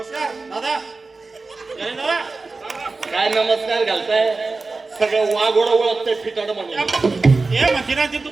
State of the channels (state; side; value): quieter; left; 3.8 dB